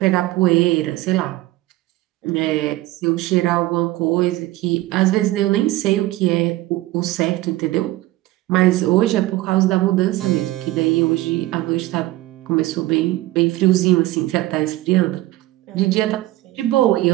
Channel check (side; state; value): left; quieter; 17.3 dB